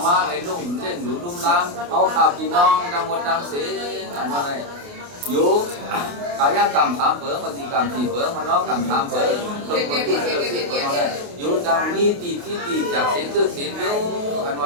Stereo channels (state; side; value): late; left; 28 ms